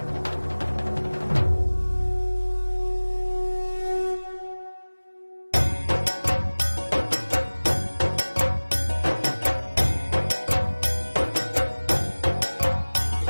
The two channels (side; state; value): both; inverted; correlation -1.00